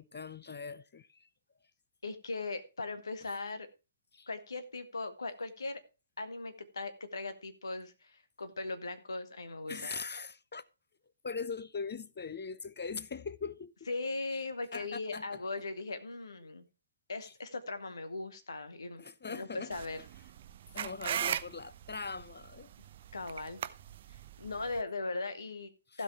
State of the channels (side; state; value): both; inverted; correlation -0.71